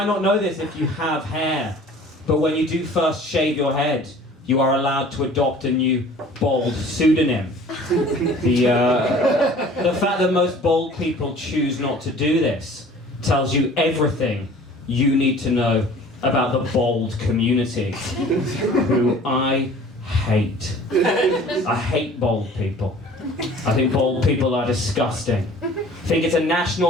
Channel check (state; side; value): normal; both; correlation 0.48